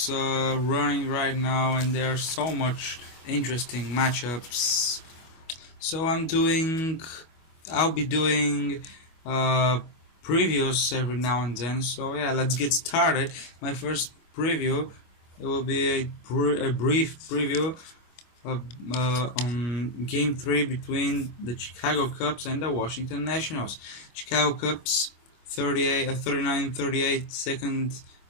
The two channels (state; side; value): late; right; 25 ms